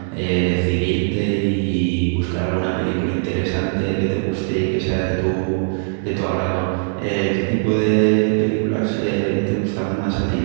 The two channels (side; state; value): left; silent; digital silence